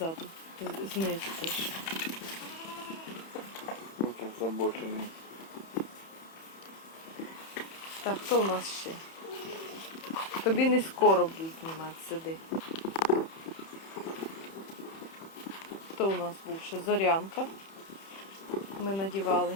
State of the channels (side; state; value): right; late; 31 ms